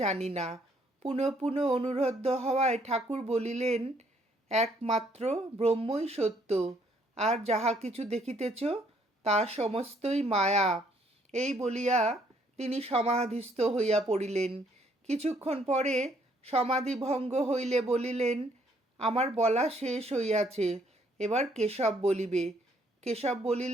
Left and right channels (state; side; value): normal; both; correlation 0.67